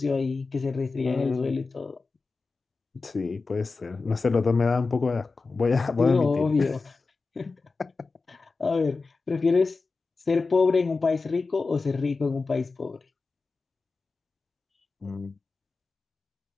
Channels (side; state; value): right; quieter; 4.0 dB